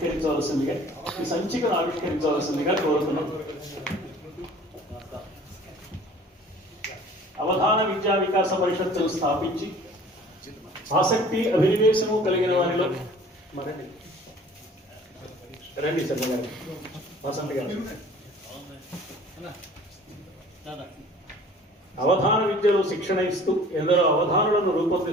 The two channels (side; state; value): both; normal; correlation 0.49